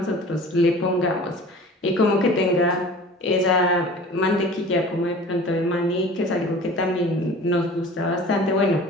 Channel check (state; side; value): normal; both; correlation 0.42